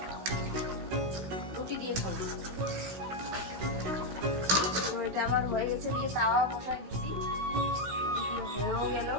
রুটি দিয়ে খাবো। তো এটা আমার হয়ে গেছে, দিয়ে তাওয়া বসাই দিছি, হয়েও গেল।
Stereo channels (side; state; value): left; late; 16 ms